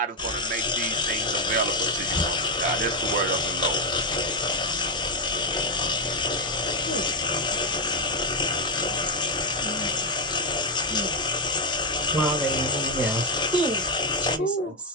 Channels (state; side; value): normal; both; correlation 0.04